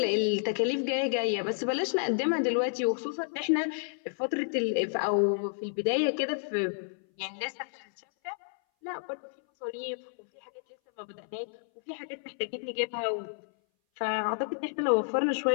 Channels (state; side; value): silent; right; 58 dB below the other